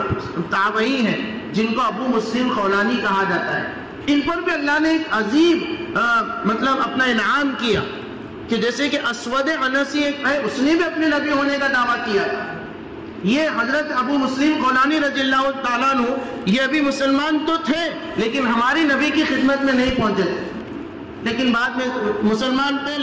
تابعی ہیں جن کو ابو مسلم خولانی کہا جاتا ہے. ان پر بھی اللہ نے ایک عظیم مطلب اپنا انعام کیا کہ جیسے کہ اسود انسی ایک ہے، اس نے بھی اپنے نبی ہونے کا دعویٰ کیا. یہ حضرت ابو مسلم خولانی رضی اللہ تعالیٰ عنہ یہ ابھی مسلمان تو تھے لیکن ہماری نبی کی خدمت میں نہیں پہنچے تھے، لیکن بعد میں مسلمان تھے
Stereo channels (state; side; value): identical; both; correlation 1.00